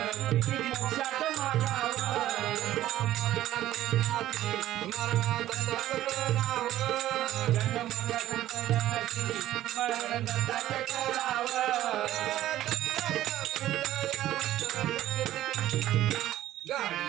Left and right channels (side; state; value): left; quieter; 13.7 dB